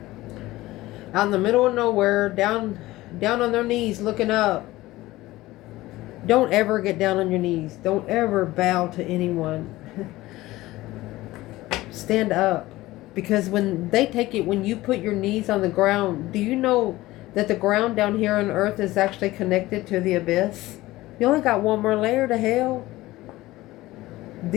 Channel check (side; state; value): right; quieter; 17.8 dB